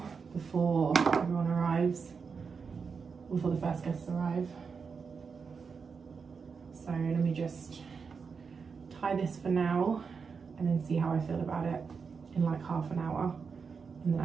before everyone arrives, before the first guests arrive. So let me just tie this for now and then see how I feel about it in like half an hour, and then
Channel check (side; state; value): left; quieter; 5.5 dB